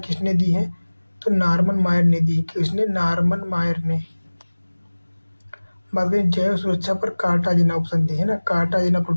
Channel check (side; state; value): both; inverted; correlation -1.00